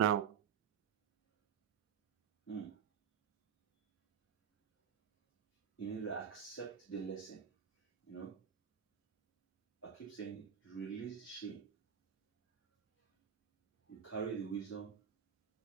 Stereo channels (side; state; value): left; quieter; 8.1 dB